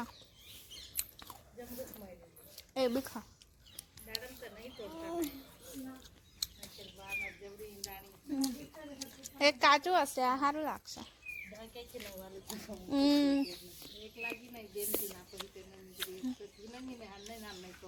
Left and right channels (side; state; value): both; identical; correlation 1.00